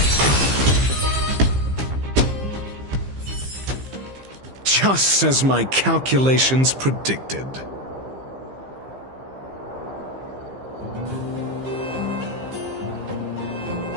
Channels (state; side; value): late; left; 15 ms